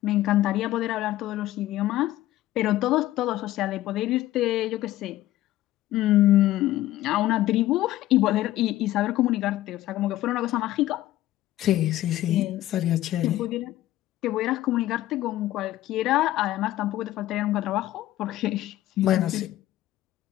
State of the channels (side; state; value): right; quieter; 14.8 dB